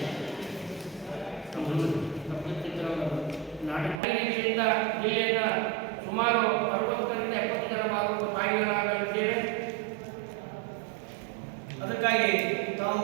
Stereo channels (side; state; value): left; drops out; at 4.0 s